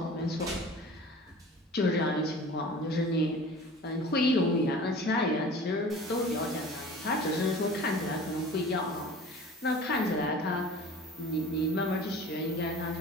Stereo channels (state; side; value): normal; both; correlation 0.42